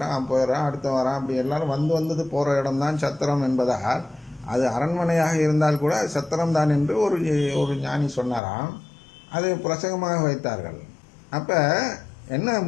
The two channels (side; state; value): right; drops out; at 8.4 s